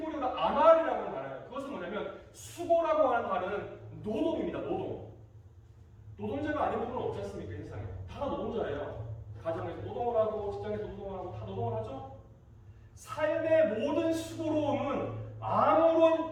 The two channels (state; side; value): identical; both; correlation 1.00